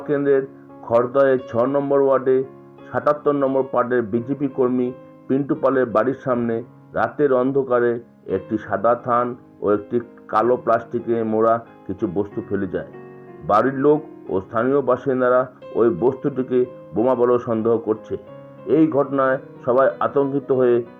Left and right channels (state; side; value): identical; both; correlation 1.00